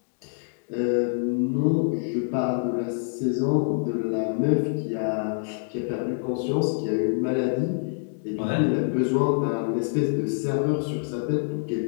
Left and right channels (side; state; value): right; silent; digital silence